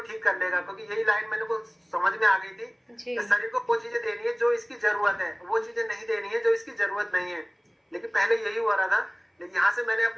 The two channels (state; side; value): identical; both; correlation 1.00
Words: कर लेगा। क्योंकि यही लाइन मैंने को समझ में आ गई थी कि शरीर को वो चीजें देनी है जो इसकी जरूरत है, वो चीजें नहीं देनी है जो इसकी जरूरत नहीं है। लेकिन पहले यही हो रहा था। लेकिन यहाँ से मैंने